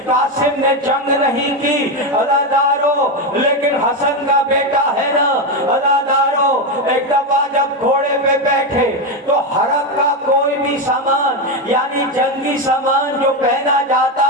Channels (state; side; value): normal; both; correlation 0.10